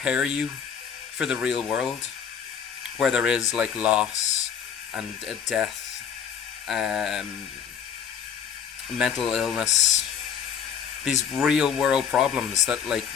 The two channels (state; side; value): quieter; right; 7.8 dB